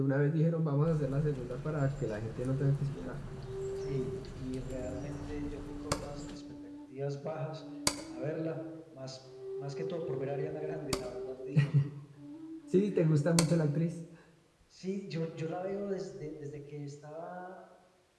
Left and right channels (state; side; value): identical; both; correlation 1.00